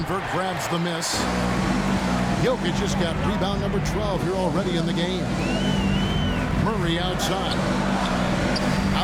grabs the miss. Jokic just got rebound number 12 here already in the game. Murray outside.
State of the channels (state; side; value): identical; both; correlation 1.00